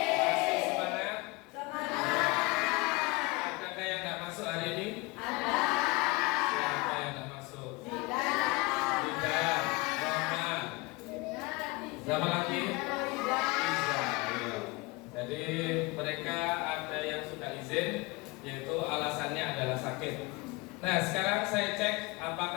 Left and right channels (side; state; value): right; quieter; 24.7 dB